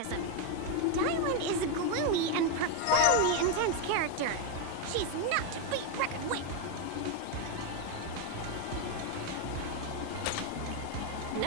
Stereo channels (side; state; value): both; different; correlation 0.02